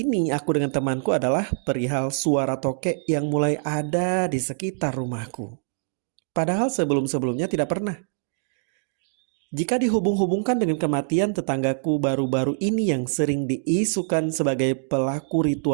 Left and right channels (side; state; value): left; silent; digital silence